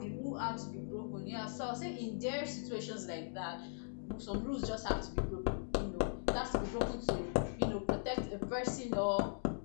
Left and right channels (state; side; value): silent; right; digital silence